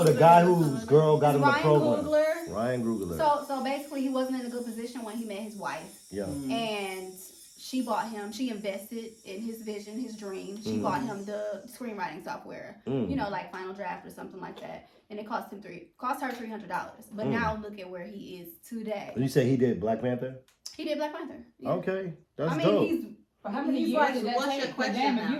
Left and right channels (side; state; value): both; identical; correlation 1.00